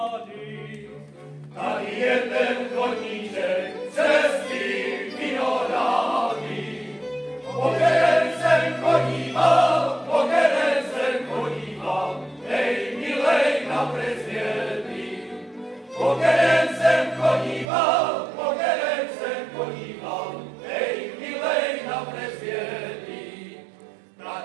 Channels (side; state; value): left; drops out; at 17.7 s